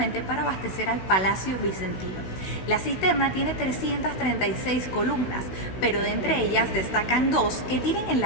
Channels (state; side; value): late; right; 16 ms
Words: para abastecer al Palacio Bizantino. La cisterna tiene 336 columnas, pero de entre ellas destacan dos que tienen en